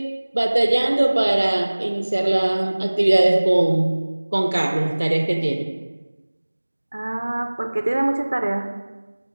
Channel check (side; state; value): both; inverted; correlation -1.00